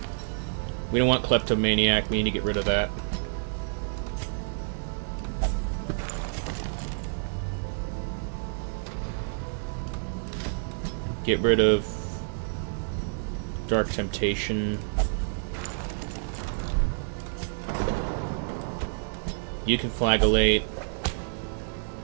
We don't want Kleptomaniac. We need to get rid of that. Get rid of Dark Temptation. You can flagellate.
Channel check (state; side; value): silent; left; digital silence